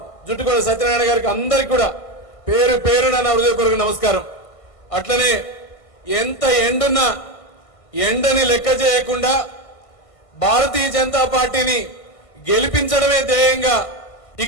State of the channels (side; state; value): right; late; 1.5 ms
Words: జుట్టుకొండ సత్యనారాయణ గారికి అందరికి కూడా పేరు పేరున నా హృదయపూర్వక నమస్కారం. అట్లనే ఎంత ఎండున్నా ఎండని లెక్క చేయకుండా భారతీయ జనతా పార్టీని గెలిపించడమే ధ్యేయంగా